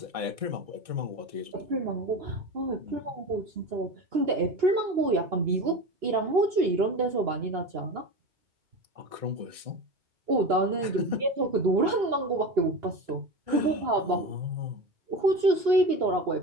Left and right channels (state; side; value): late; left; 2.8 ms